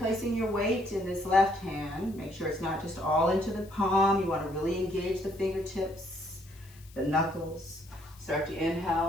your weight in this left hand. Make sure it's not just all into the palm. You want to really engage the fingertips, the knuckles. Start to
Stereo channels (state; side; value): noise; left; hiss, 25 dB below the sound